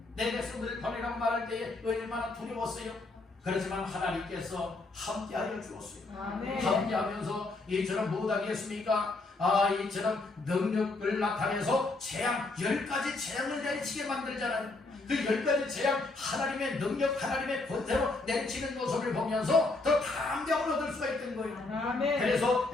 내 백성들을 버리라고 말할 때에 얼마나 두려웠어요. 그렇지만 하나님께서 함께하여 주었어요. 함께하면서 이처럼 못하겠습니까? 이처럼 능력을 나타내서 재앙 10가지 재앙을 내리치게 만들잖아요. 그 10가지 재앙 하나님의 능력 하나님의 권세로 내리치는 모습을 보면서 더 감격을 얻을 수가 있던 거예요. 그래서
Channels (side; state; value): right; quieter; 3.3 dB